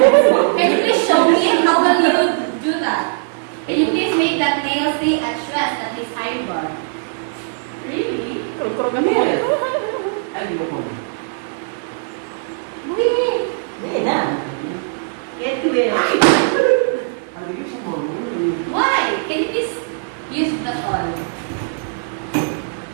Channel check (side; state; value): left; silent; 56 dB below the other